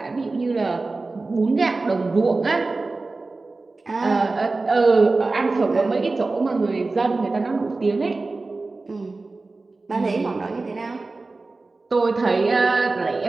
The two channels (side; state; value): left; quieter; 3.5 dB